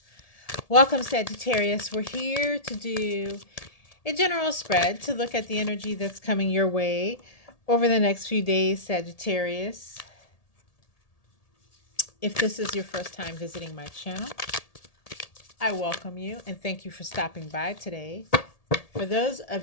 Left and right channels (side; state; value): right; late; 1.8 ms